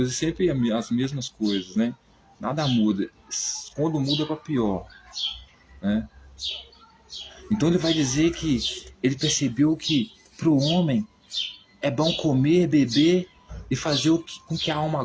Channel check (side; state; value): both; identical; correlation 1.00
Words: sempre as mesmas coisas, né? Nada muda. Quando muda é para pior, né? Então ele vai dizer que ele percebeu que para o homem é bom comer, beber e fazer com que a alma